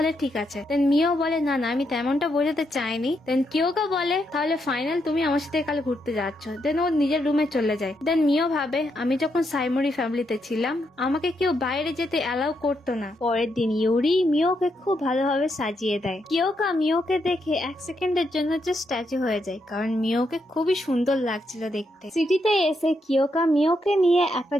ঠিক আছে। দেন মিও বলে না না আমি তেমনটা বোঝাতে চাইনি। দেন কিয়োকা বলে তাহলে ফাইনাল তুমি আমার সাথে কাল ঘুরতে যাচ্ছ। দেন ও নিজের রুমে চলে যায়। দেন মিও ভাবে আমি যখন সাইমোরি ফ্যামিলিতে ছিলাম আমাকে কেউ বাইরে যেতে অ্যালাউ করতো না। পরের দিন ইউরি মিওকে খুব ভালোভাবে সাজিয়ে দেয়। কিয়োকা মিওকে দেখে এক সেকেন্ডের জন্য যে স্ট্যাচু হয়ে যায়, কারণ মিওকে খুবই সুন্দর লাগছিল দেখতে। সিটিতে এসে কিয়োকা মিওকে নিয়ে একটা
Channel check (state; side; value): normal; both; correlation 0.80